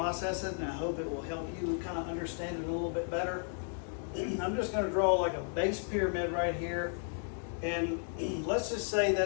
it, and I hope it will help you kind of understand it a little bit better. I'm just going to draw like a base pyramid right here, and let's just say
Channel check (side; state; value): right; silent; 55 dB below the other